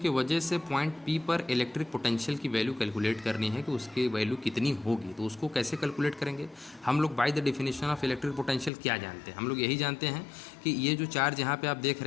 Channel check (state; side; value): drops out; right; at 8.7 s